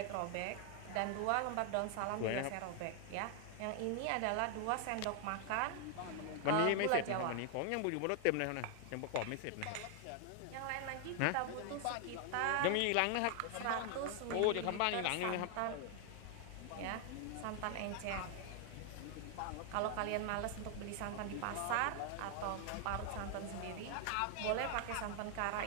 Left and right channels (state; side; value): different; both; correlation 0.00